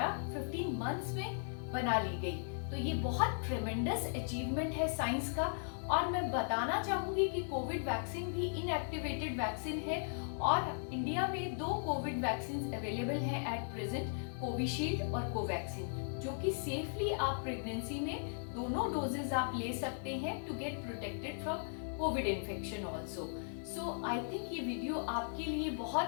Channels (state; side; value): silent; right; digital silence